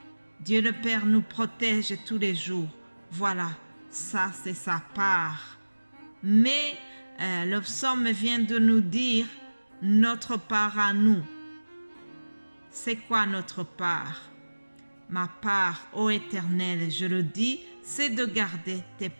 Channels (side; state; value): both; inverted; correlation -1.00